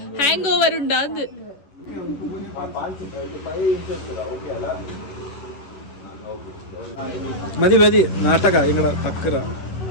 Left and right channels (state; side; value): late; right; 11 ms